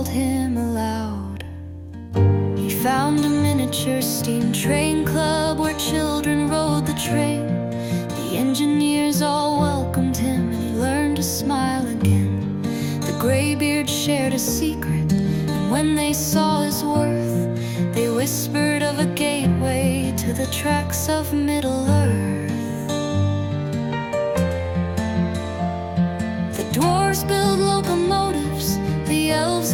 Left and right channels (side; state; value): both; identical; correlation 1.00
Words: him aloud. He found a miniature steam train club where children rode the train. The engineers all welcomed him and he learned to smile again. The graybeard shared a secret, and when they saw his worth, they whispered of a gateway to the tracks of Middle-earth. The dwarves build locomotives, the elves